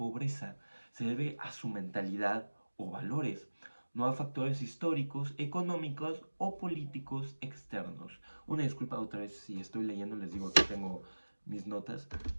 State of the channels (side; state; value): both; inverted; correlation -1.00